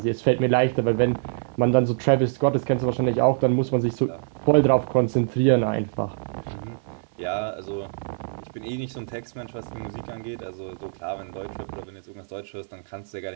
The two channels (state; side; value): silent; left; 62 dB below the other